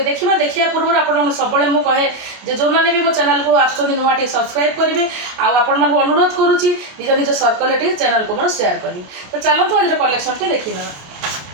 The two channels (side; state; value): left; late; 29 ms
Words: देखा पूर्व आप सब मुझे जो मैंने भी मो चैनल को आसुँच नुआ टी सब्सक्राइब करेंगे आपण अनुरोध करुच्ची निज निज सर्कल चैनल को मोर शेयर करेंगे। तो चलते आज कलेक्शन टी देखी